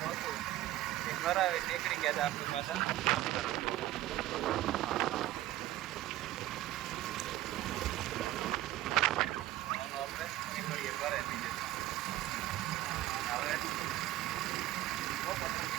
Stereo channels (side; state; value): left; quieter; 15.1 dB